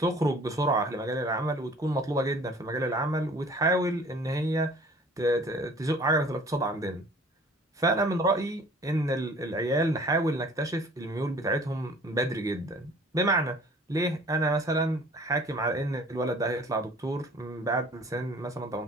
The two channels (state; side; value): normal; both; correlation 0.50